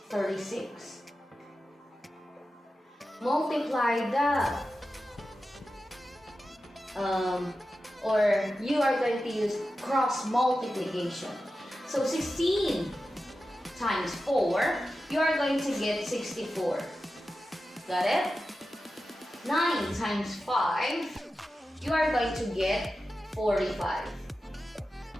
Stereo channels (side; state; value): both; normal; correlation 0.92